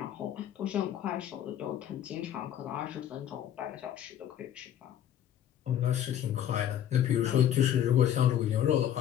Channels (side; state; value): right; quieter; 10.5 dB